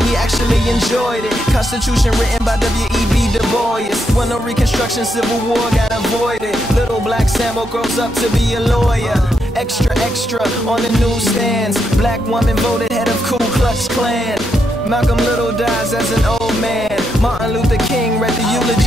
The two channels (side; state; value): both; normal; correlation 0.81